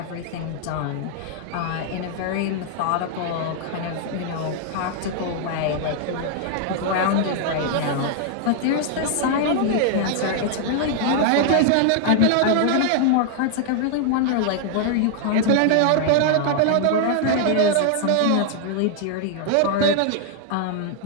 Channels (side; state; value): both; different; correlation 0.00